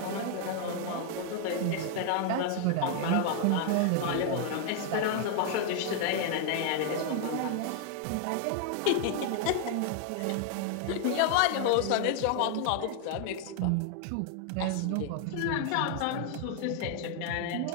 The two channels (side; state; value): both; different; correlation 0.00